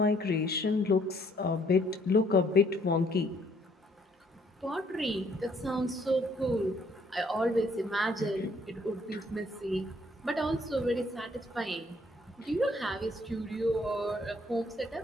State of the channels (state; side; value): normal; both; correlation 0.65